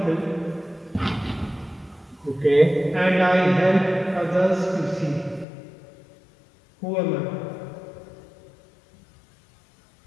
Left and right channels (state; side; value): drops out; right; at 5.5 s